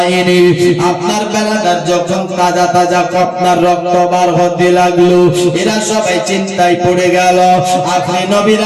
আপনার বেলাদার যখন তাজা তাজা আপনার রক্ত বার হতে লাগলো, এরা সবাই চিন্তায় পড়ে গেল। আখিরি নবীর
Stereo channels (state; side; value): identical; both; correlation 1.00